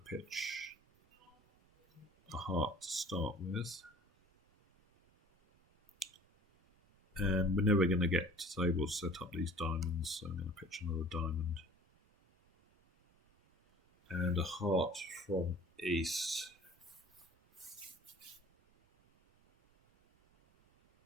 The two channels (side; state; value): both; normal; correlation 0.48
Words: pitch a heart to start with. And we're never going to get to able to set up these diamonds, so I'm going to pitch another diamond. And a heart from East.